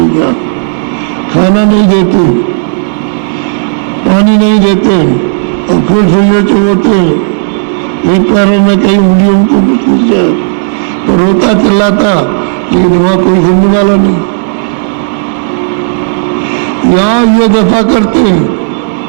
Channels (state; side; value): silent; left; digital silence